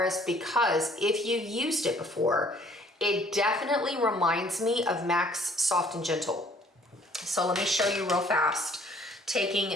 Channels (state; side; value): normal; both; correlation 0.58